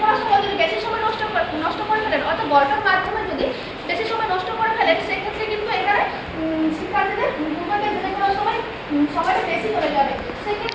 করার সময় যদি বেশি সময় নষ্ট করে ফেলেন অর্থাৎ গল্পের মাধ্যমে যদি বেশি সময় নষ্ট করে ফেলেন সেক্ষেত্রে কিন্তু এখানে শিক্ষার্থীদের পূর্বজ্ঞান যাচাই করার সময় সময়টা বেশি হয়ে যাবে।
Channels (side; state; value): both; identical; correlation 1.00